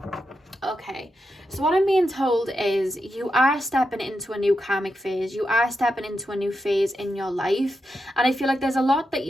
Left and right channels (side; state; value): both; normal; correlation 0.87